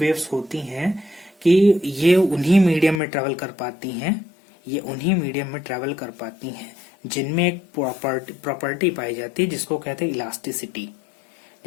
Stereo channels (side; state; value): right; drops out; at 3.0 s